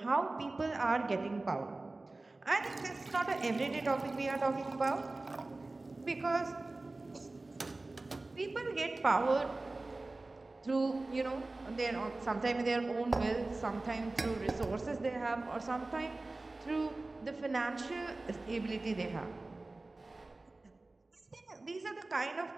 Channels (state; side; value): quieter; left; 3.1 dB